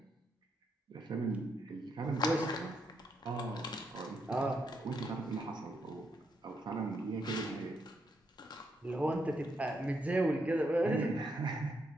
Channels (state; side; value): normal; both; correlation 0.79